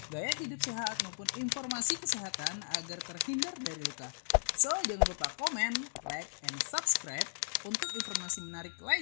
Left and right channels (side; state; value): right; silent; digital silence